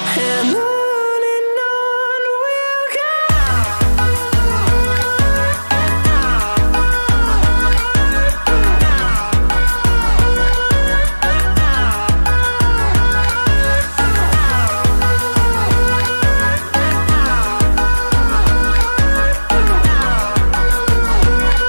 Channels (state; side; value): inverted; both; correlation -1.00